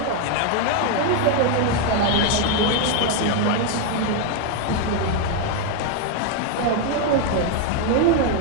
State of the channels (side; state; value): both; different; correlation 0.01